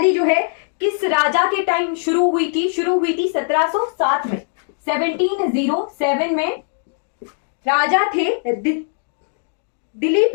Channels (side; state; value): right; silent; digital silence